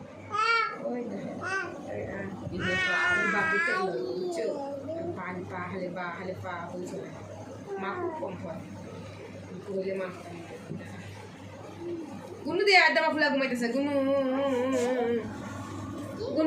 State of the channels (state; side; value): identical; both; correlation 1.00